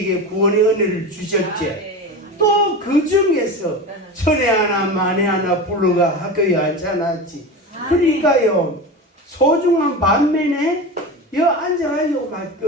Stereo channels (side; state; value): both; normal; correlation 0.27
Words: 구원의 은혜를 주셨지. 또 그 중에서 천에 하나 만에 하나 불러가 학교에 앉혀놨지. 그러니까요, 소중한 반면에 여 앉아가지고 막